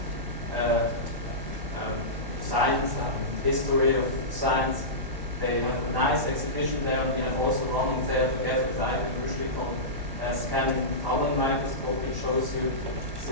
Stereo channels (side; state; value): left; late; 1.1 ms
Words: science and history of science. They have a nice exhibition there, and we have also running there together with Ivan Rushlik on scanning tunnel microscope, which shows you